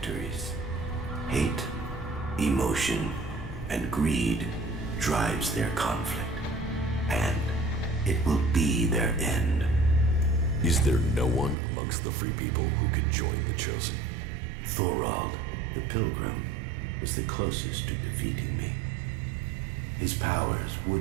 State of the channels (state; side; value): drops out; left; at 11.6 s